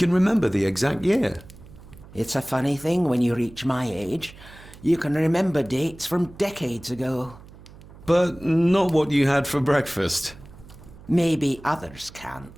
remember the exact year? It's a funny thing when you reach my age. You can remember dates from decades ago. But not what you had for breakfast. Maybe others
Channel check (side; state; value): right; noise; hum, 20 dB below the sound